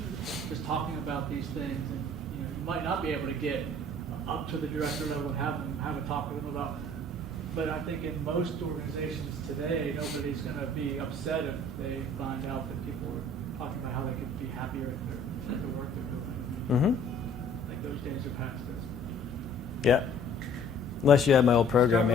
just talking about these things. And you might not be able to get up to the director level and have a talk with them about. But I think in most organizations today, nobody's going to be upset if they find out that people are talking about how they could be happier at the work they're doing. I think those days are past us. Yeah. Unless you have my old program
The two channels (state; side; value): normal; both; correlation 0.53